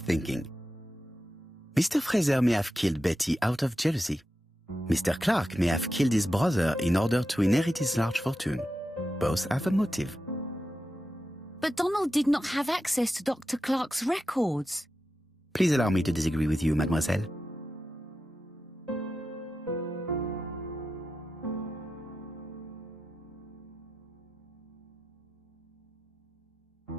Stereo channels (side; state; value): both; normal; correlation 0.90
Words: Mr. Fraser may have killed Betty out of jealousy. Mr. Clark may have killed his brother in order to inherit his large fortune. Both have a motive. But Donald did not have access to Dr. Clark's records. Please allow me to disagree with you, mademoiselle.